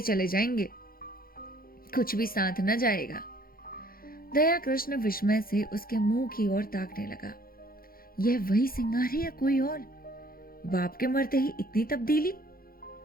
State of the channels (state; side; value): late; right; 0.42 ms